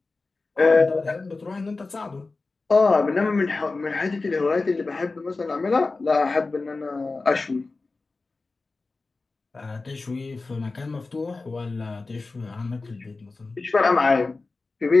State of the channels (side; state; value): right; quieter; 3.7 dB